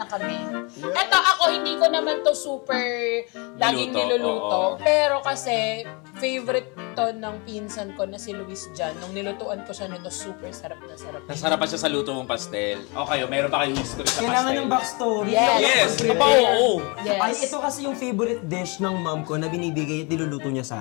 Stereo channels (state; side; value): quieter; right; 30.4 dB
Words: kami. Eto, ako, hindi ko naman to super laging niluluto. oo. Pero kasi, favorite to ng pinsan ko na si Luis Jan. Nung nilutuan ko siya nito, super sarap na sarap. Nasarapan siya sa luto mong pastel. Okay, meron pa kayong history sa Kailangan pastel? ng backstory. Yes. Yes! Prepare. Aba, oo. Yes. Ay, ito kasi yung favorite dish ng mom ko na binibigay at niluluto niya